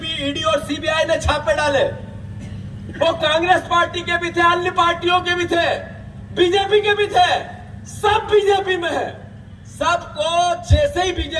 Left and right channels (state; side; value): identical; both; correlation 1.00